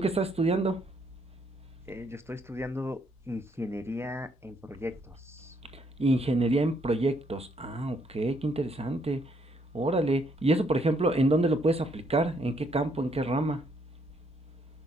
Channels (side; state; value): both; normal; correlation 0.71